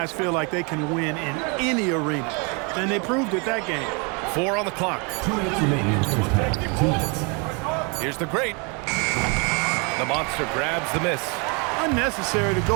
feel like they can win in any arena. And they proved it that game. 4 on the clock. 2 minutes remaining in the first half. 2 minutes. Here's the great. The monster grabs the miss. Unnecessary to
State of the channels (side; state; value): left; quieter; 32.5 dB